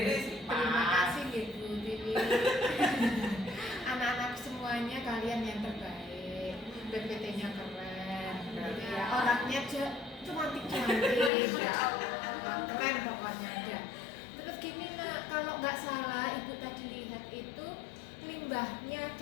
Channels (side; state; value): right; drops out; at 11.3 s